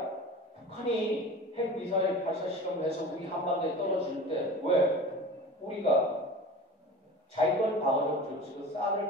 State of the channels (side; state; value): both; normal; correlation 0.37